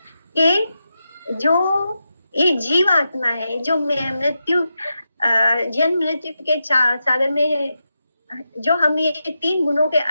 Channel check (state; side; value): inverted; both; correlation -0.88